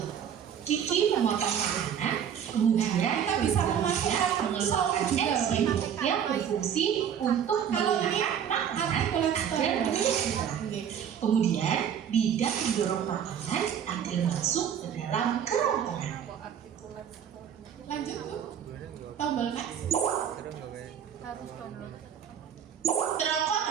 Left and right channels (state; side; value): quieter; left; 8.6 dB